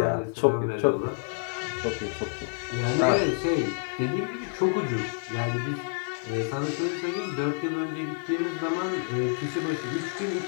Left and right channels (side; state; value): right; silent; 59 dB below the other